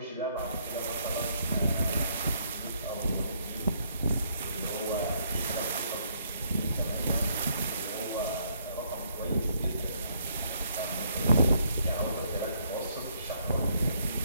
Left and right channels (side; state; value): both; inverted; correlation -0.70